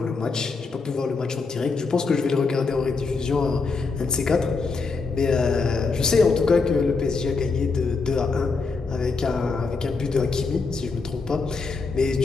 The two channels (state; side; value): quieter; right; 4.4 dB